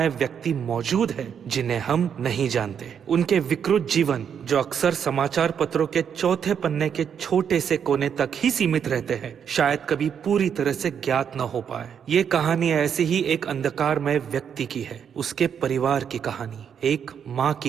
व्यक्ति मौजूद हैं जिन्हें हम नहीं जानते। उनके विकृत जीवन जो अक्सर समाचार पत्रों के चौथे पन्ने के छोटे से कोने तक ही सीमित रहते हैं, शायद कभी पूरी तरह से ज्ञात न हो पाए। ये कहानी ऐसे ही एक अंधकारमय व्यक्ति की है, उसके परिवार की कहानी, एक माँ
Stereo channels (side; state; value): left; quieter; 7.8 dB